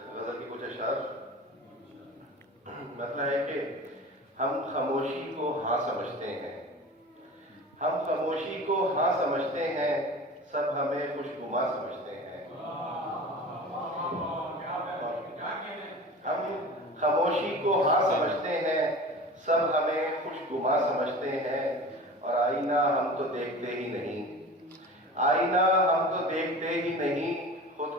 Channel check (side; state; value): both; normal; correlation 0.37